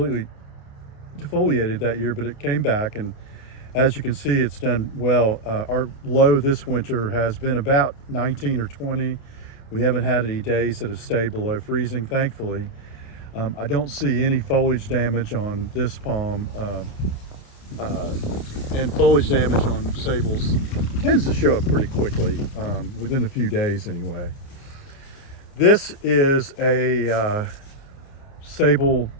defoliated that year, but it came back, and as you can see, it's done well. Our low this winter has been about 19 or 20. We haven't had any days that have stayed below freezing, thankfully. I don't see any foliage damage on this palm, and foliage damage on sables tends to show up pretty quickly, within a few days anyway. This is a Sabal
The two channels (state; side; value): late; right; 29 ms